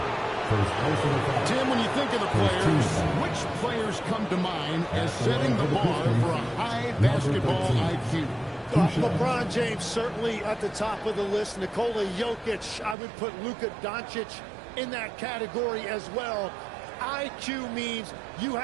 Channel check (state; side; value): drops out; left; at 13.0 s